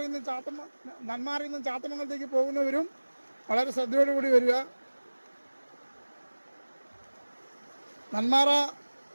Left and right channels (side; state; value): both; inverted; correlation -1.00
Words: നിന്നും ചാത്തമംഗലത്തേക്ക് പോകുന്നവരും വളരെ ശ്രദ്ധയോടുകൂടി വരിക. നന്മാറ